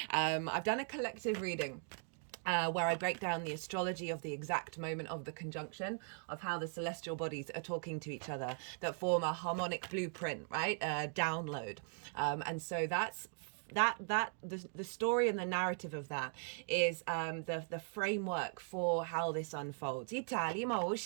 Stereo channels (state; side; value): silent; left; 52 dB below the other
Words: I've done a collective reading where I break down the astrology of the exact moment of the conjunction, of how the celestial bodies are talking to each other, that form a harmonic blueprint, right? Download. And so that's the story and the narrative of that is the framework for how this unfolds. I